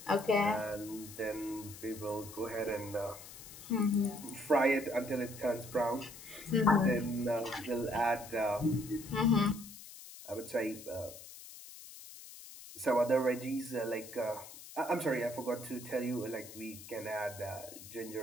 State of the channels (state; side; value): noise; left; hiss, 15 dB below the sound